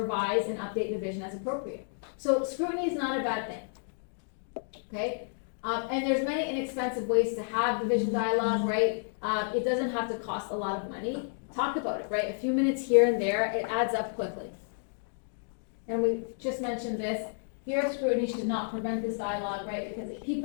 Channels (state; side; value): silent; right; digital silence